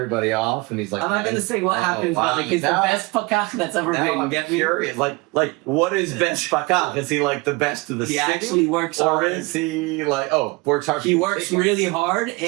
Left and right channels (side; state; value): left; quieter; 25.2 dB